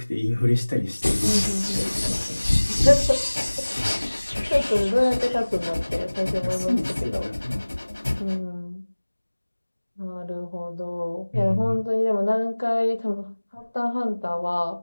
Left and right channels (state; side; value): inverted; both; correlation -1.00